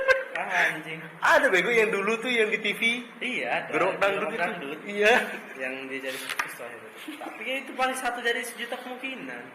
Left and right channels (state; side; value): identical; both; correlation 1.00